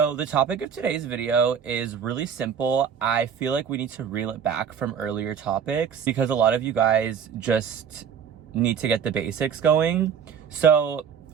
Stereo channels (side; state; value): left; quieter; 7.4 dB